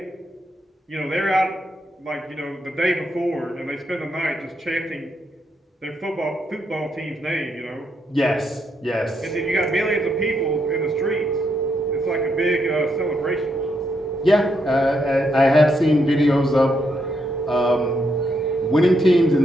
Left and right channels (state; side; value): normal; both; correlation 0.79